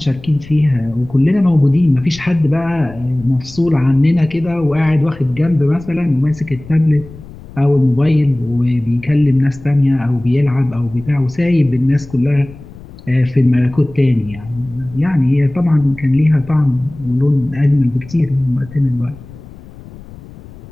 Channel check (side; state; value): left; noise; rumble, 18 dB below the sound